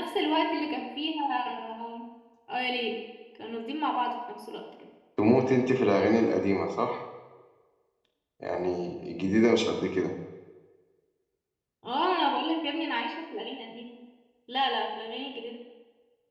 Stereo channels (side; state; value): both; identical; correlation 1.00